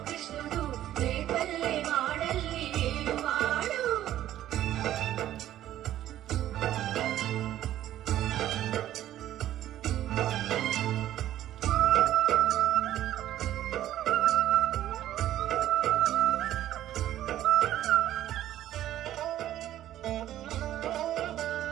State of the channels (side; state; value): left; quieter; 12.8 dB